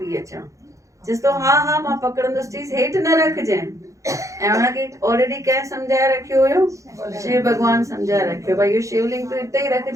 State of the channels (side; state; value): left; late; 0.15 ms